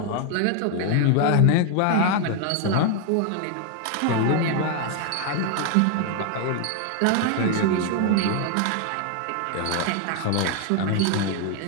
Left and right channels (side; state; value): both; different; correlation 0.00